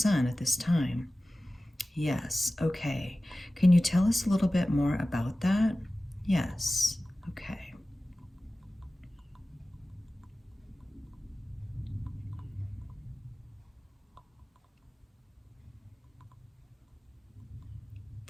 at this time? Yes. Okay. Can you tell us a little bit more about that? Yes. Okay.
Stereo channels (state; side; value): normal; both; correlation 0.96